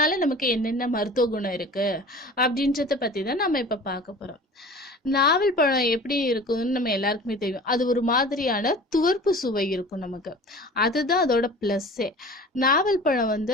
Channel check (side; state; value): both; normal; correlation 0.41